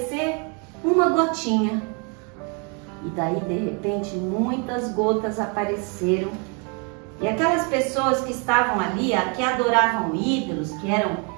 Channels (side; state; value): left; quieter; 35.3 dB